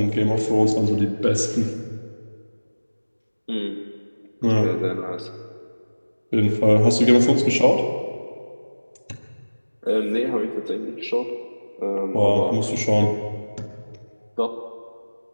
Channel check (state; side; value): inverted; both; correlation -1.00